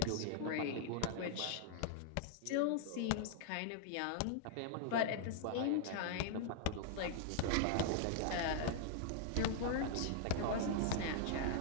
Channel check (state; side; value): different; both; correlation -0.01